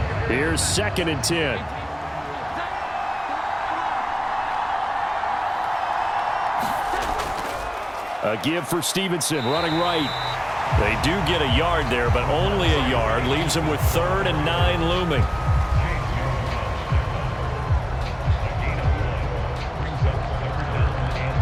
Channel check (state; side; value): identical; both; correlation 1.00